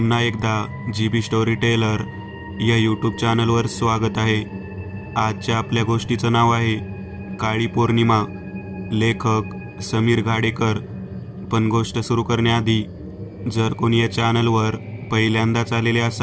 एकदा GB स्टोरी टेलर या यूट्यूब चॅनलवर स्वागत आहे. आजच्या आपल्या गोष्टीचं नाव आहे काळी पौर्णिमा. लेखक समीर घाडेकर. पण गोष्ट सुरू करण्याआधी जर कोणी या चॅनलवर पहिल्यांदाच आलेले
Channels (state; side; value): identical; both; correlation 1.00